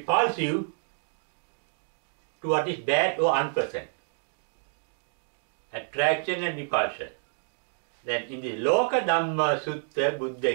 to what is bad or unpleasant. Attraction and repulsion. Then in the Loka Dhamma Sutta, Buddha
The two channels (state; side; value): silent; left; digital silence